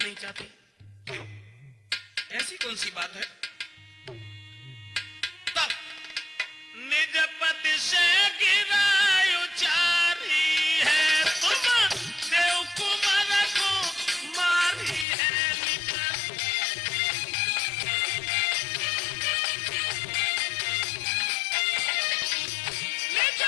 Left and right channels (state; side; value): drops out; right; at 15.1 s